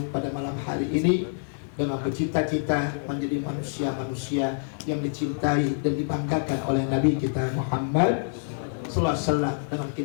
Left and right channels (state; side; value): silent; right; digital silence